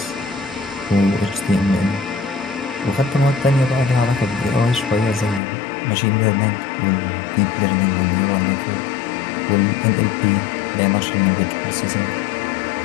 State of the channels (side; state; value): right; drops out; at 5.4 s